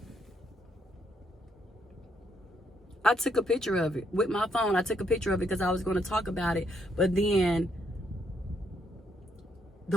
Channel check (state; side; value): normal; both; correlation 0.73